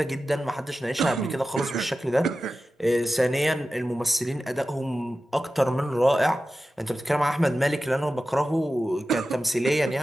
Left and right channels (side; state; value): both; normal; correlation 0.93